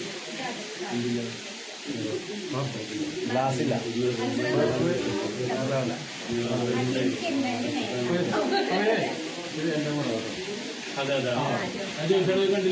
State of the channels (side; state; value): both; identical; correlation 1.00